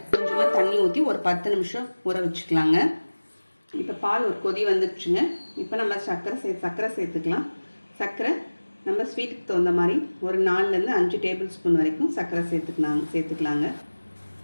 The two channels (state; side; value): inverted; both; correlation -1.00